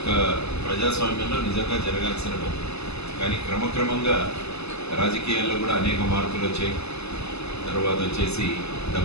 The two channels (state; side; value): late; right; 0.79 ms